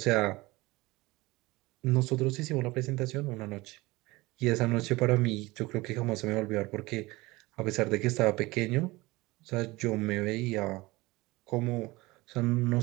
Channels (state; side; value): quieter; left; 21.3 dB